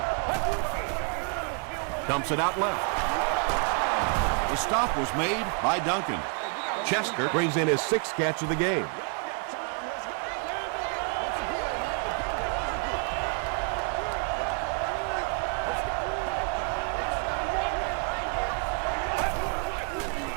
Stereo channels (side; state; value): left; quieter; 38.4 dB